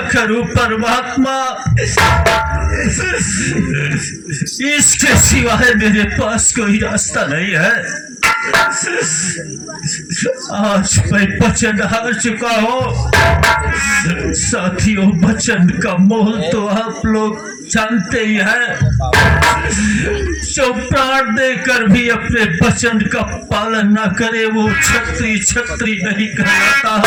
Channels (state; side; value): identical; both; correlation 1.00